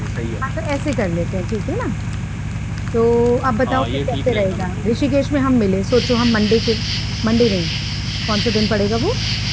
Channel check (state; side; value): identical; both; correlation 1.00